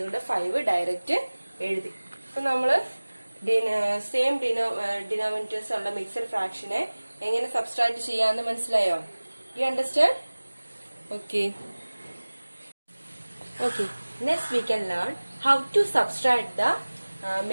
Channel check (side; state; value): both; inverted; correlation -1.00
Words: 5 ഡയറക്റ്റ് എഴുതി. അപ്പൊ നമ്മള് സെയിം ഡിനോമിനേറ്റേഴ്സ് ഉള്ള മിക്സഡ് ഫ്രാക്ഷനെ എങ്ങനെ സബ്സ്ട്രാക്ട് ചെയ്യാന്ന് മനസ്സിലായോ? You understand? Okay. Okay, next we can learn how to subtract the